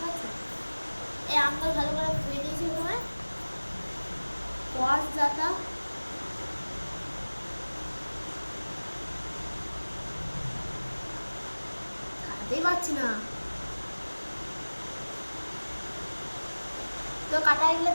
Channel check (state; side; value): inverted; both; correlation -1.00